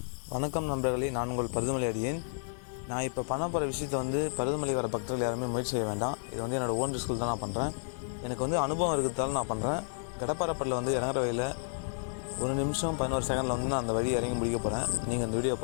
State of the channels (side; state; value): right; silent; 57 dB below the other